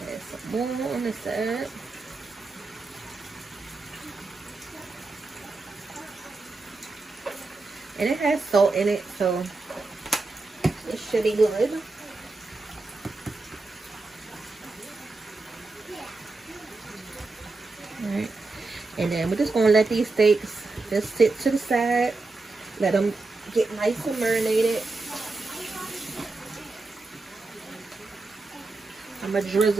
Add some more on this side. And it has salt in it, so it should be good. Alright, and then we're just going to let these steaks just sit to the side. Let them get nice and marinated. I'm going to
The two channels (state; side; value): quieter; left; 3.5 dB